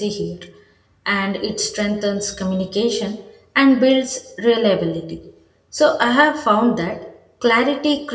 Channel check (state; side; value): identical; both; correlation 1.00